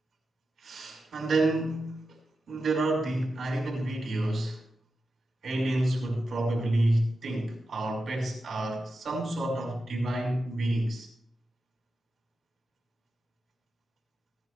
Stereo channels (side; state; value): both; normal; correlation 0.90